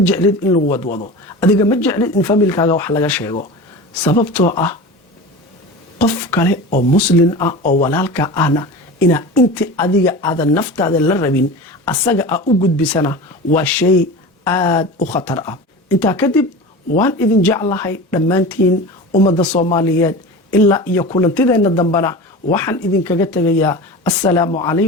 jeclid in lagu wadwado, adiga ma jeclid in familkaaga wax laga sheego, sababtoo ah qof kale oo muslim ah oo walaalka ahna inaa inti adiga aadan naftaada la rabin asaga a u gudbisana waa shay aad u khatar ah. intaa kadib waan idin jeclahay dhammaantiin ummadda soomaaliyeed, ilaa iyo kulantideenna dambana waxaan idinkaga tegayaa assalaamu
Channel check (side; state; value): both; normal; correlation 0.31